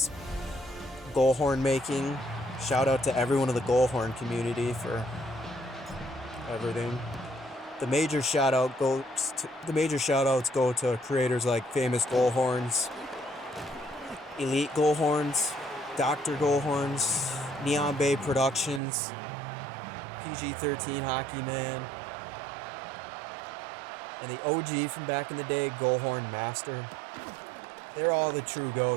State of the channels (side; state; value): left; drops out; at 18.8 s